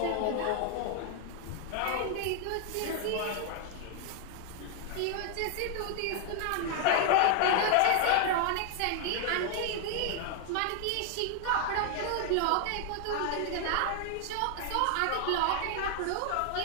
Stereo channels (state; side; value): different; both; correlation 0.00